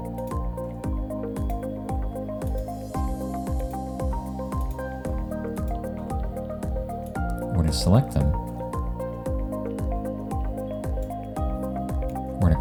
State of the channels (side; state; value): both; identical; correlation 1.00